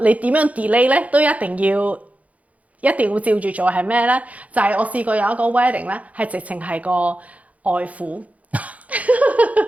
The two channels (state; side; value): late; left; 0.069 ms